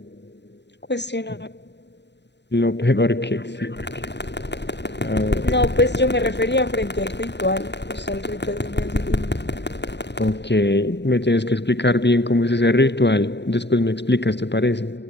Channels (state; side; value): late; right; 0.50 ms